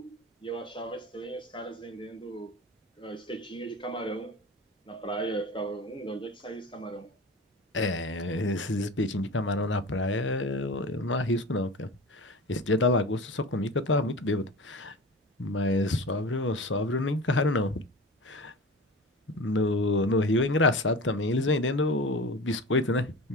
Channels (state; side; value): normal; both; correlation 0.33